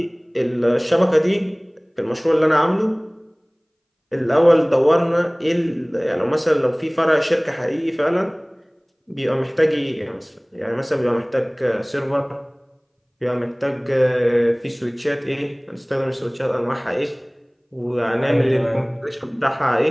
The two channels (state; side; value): identical; both; correlation 1.00